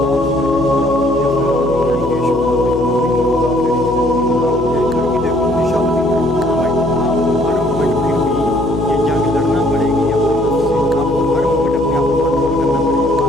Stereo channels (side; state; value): left; noise; hum, 13 dB below the sound